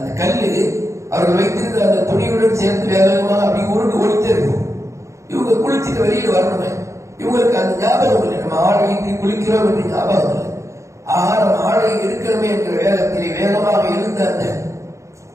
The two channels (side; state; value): left; late; 0.14 ms